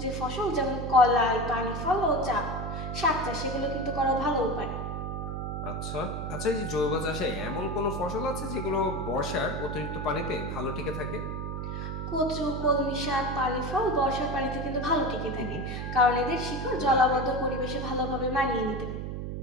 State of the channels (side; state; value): right; noise; hum, 4 dB below the sound